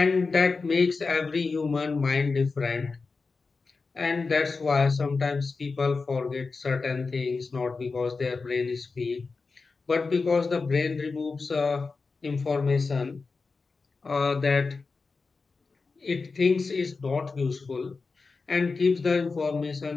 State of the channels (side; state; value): right; quieter; 4.3 dB